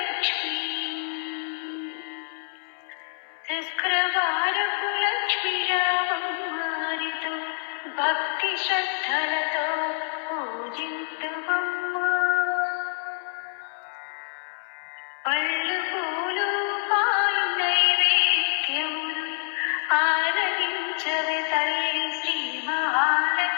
శుక్రవారపు లక్ష్మీరామమ్మరితో భక్తి శ్రద్ధలతో పూజింతుమమ్మా. పళ్ళు పూలు పాలు నైవేద్యములు ఆరగించవే తల్లి శ్రీ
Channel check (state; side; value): silent; right; 58 dB below the other